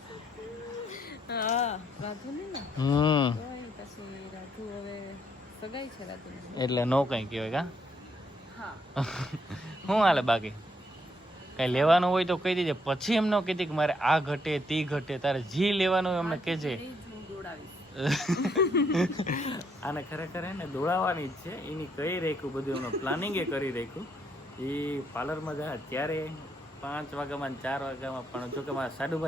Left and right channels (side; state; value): both; normal; correlation 0.73